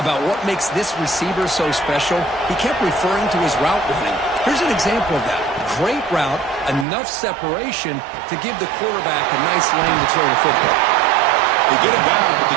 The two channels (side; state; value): left; drops out; at 6.9 s